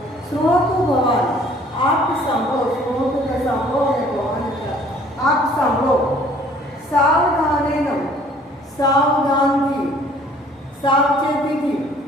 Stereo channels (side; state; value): both; normal; correlation 0.56